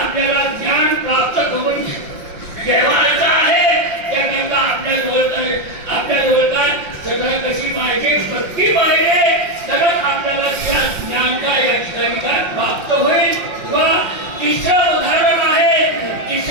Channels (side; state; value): left; late; 5.7 ms